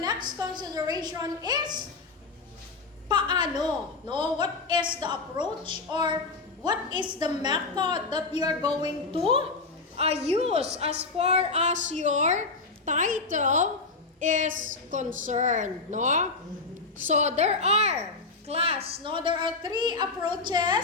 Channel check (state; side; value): quieter; right; 3.8 dB